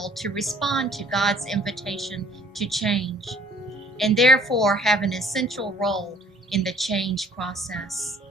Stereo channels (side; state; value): both; normal; correlation 0.56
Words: to respond to God's invitation to change, and therefore have an essential role in the change process.